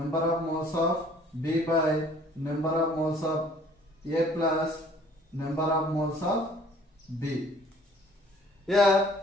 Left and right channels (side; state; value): both; normal; correlation 0.56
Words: of moles of B by number of moles of A plus number of moles of B. Here